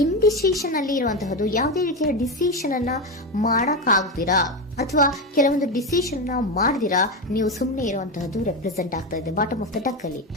ಇಂಡಿಸಿಷನ್ ಅಲ್ಲಿ ಇರುವಂತಹದ್ದು ಯಾವುದೇ ರೀತಿಯ ಡಿಸಿಷನ್ ಅನ್ನ ಮಾಡಕ್ ಆಗ್ದಿರಾ ಅಥವಾ ಕೆಲವೊಂದು ಡಿಸಿಷನ್ ಮಾಡ್ದಿರಾ ನೀವು ಸುಮ್ಮನೆ ಇರುವಂತಹದ್ದು ರೆಪ್ರೆಸೆಂಟ್ ಆಗ್ತಾ ಇದೆ ಬಾಟಮ್ ಆಫ್ ದ ಡಕ್ ಅಲ್ಲಿ.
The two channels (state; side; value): normal; both; correlation 0.15